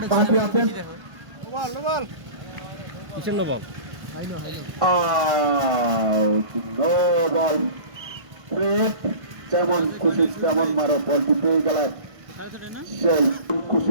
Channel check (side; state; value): left; late; 1.5 ms